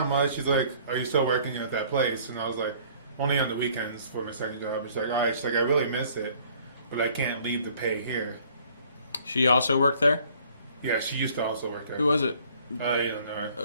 much." She's like, "Are you still working at that place?" And I was like, "Only on the weekends for my second job." And she's like, "All right." She's like, "I really miss it, but I can't leave the pay here." She also worked there. Yeah, she used to also work there. Who was it? You don't know her.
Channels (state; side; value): inverted; both; correlation -0.57